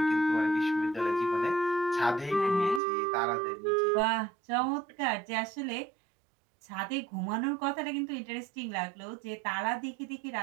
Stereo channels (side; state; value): left; drops out; at 2.8 s